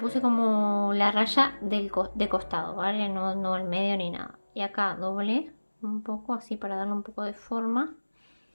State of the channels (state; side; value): inverted; both; correlation -1.00